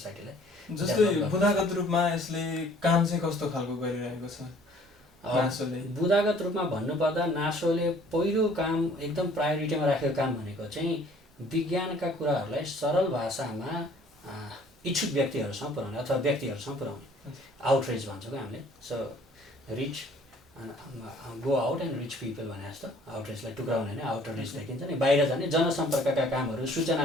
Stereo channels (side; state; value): both; normal; correlation 0.55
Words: जस्तै बुदागत रूपमा यसले काम चाहिँ कस्तो खालको गरिरहेको छ नासोले? बुदागत रूपमा भन्नुपर्दा नासोले पहिलो काम एकदम प्रायोरिटीमा राखेको काम भनेको चाहिँ विज्ञानका कुराहरूलाई सरल भाषामा इच्छुक व्यक्तिहरूसँग पुर्याउने अथवा व्यक्तिहरूसँग पुर्याउने, आउटरिच भन्छौँ क्या हामीले। So rich go out and rich people भने जस्तो आउटरिचलाई टुक्राउने होइन, आउटर रिच देखिन्छ नि, बाहिर जाने जनसम्पर्कका कामहरू, सूचना